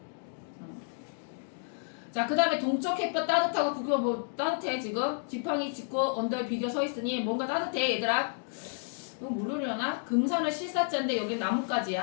자, 그 다음에 동쪽 햇볕 따뜻하고 구겨 뭐 따뜻해 지금 지팡이 짚고 언덕에 비겨 서 있으니 뭔가 따뜻해 얘들아. 이거 모르려나? 금산은 실사자인데 여기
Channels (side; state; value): right; silent; 57 dB below the other